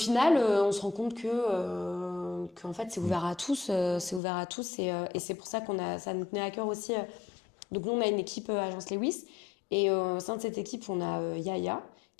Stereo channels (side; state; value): right; drops out; at 4.2 s